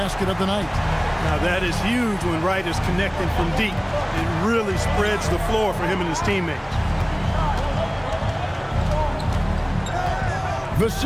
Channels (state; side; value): identical; both; correlation 1.00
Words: of the night. Now that is huge when Wright is connecting from deep. It really spreads the floor for him and his teammates.